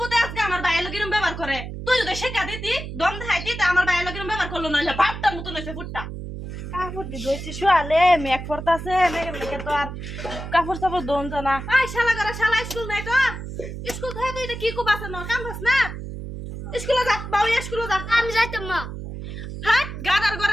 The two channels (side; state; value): right; noise; hum, 8 dB below the sound